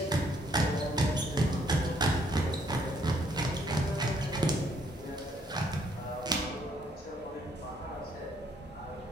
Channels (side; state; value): both; normal; correlation 0.68